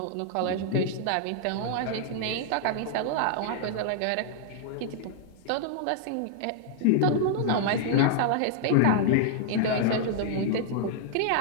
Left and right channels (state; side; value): different; both; correlation -0.01